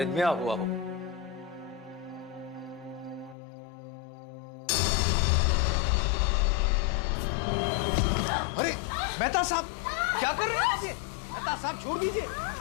हुआ हो। अरे मेहता साहब, क्या कर रहे हैं आप? ये मेहता साहब छोड़ दीजिए,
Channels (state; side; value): drops out; right; at 3.4 s